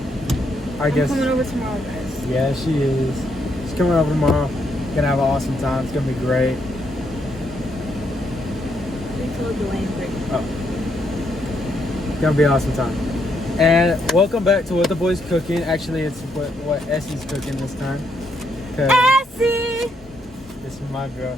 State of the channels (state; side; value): normal; both; correlation 0.76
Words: I guess... I'm coming over tomorrow, guys. Yeah, she is. She's coming over tomorrow, gonna have an awesome time, it's gonna be great. We told Dwayne Oh. Gonna be an awesome time. And welcome back to What the Boys Cooking. Actually, it's what Essie's cooking this time. Essie! This is my